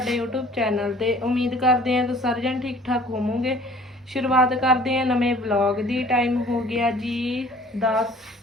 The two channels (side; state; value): both; normal; correlation 0.51